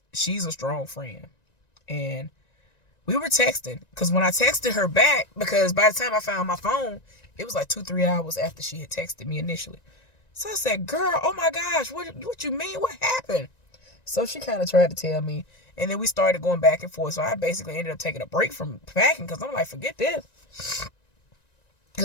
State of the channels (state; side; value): late; right; 1.9 ms